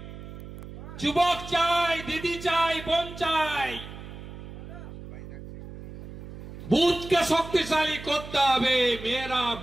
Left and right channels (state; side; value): noise; right; hum, 13 dB below the sound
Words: যুবক চাই, দিদি চাই, বোন চাই। বুথকে শক্তিশালী করতে হবে। মেরা